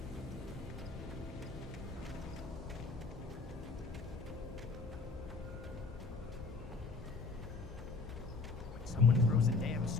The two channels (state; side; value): quieter; right; 4.1 dB